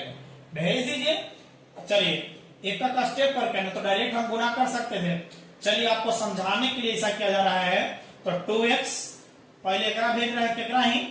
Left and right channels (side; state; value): both; identical; correlation 1.00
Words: भेज दीजिए। चलिए एक का स्टेप करके ना तो डायरेक्ट हम गुना कर सकते थे। चलिए आपको समझाने के लिए ऐसा किया जा रहा है। तो 2x पहले एकरा भेज रहा है केकरा ही